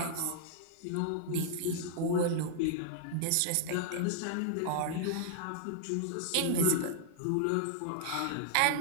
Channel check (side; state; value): both; different; correlation -0.01